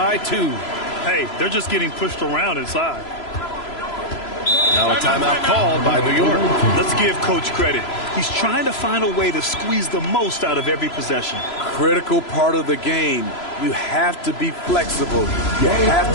2. Hey, they're just getting pushed around inside. Now a timeout called by New York. Let's give Coach credit. He's trying to find a way to squeeze the most out of every possession. Critical part of the game. You have to be flexible. You have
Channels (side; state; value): right; late; 3.0 ms